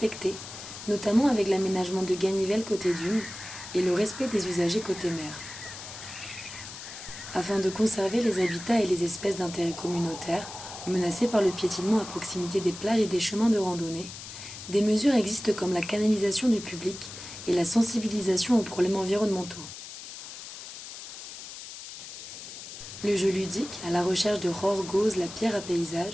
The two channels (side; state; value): left; noise; hiss, 12 dB below the sound